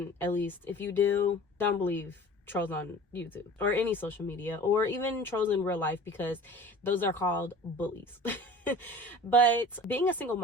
at least. If you do, don't believe trolls on YouTube or any social media, or even trolls in real life, because those are called bullies. But being a single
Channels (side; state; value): both; normal; correlation 0.42